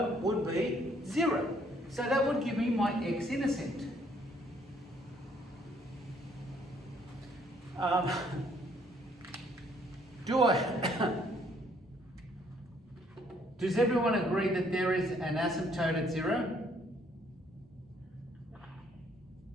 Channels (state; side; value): normal; both; correlation 0.65